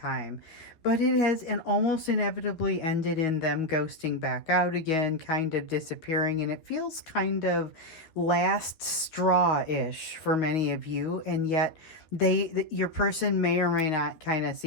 But it has and almost inevitably ended in them ghosting back out again, kind of disappearing. And it feels kind of last straw-ish for many of you. And yet your person may or may not kind of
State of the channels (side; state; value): right; late; 12 ms